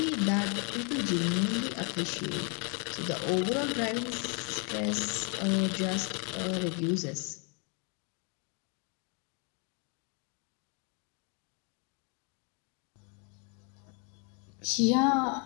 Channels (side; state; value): right; quieter; 36.3 dB